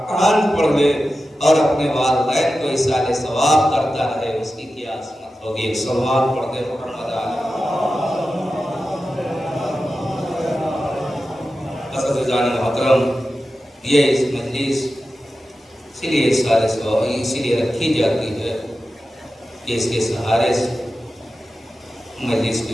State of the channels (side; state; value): both; normal; correlation 0.93